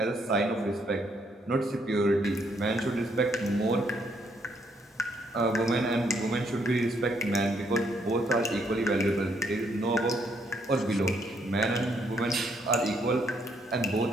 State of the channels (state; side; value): normal; both; correlation 0.72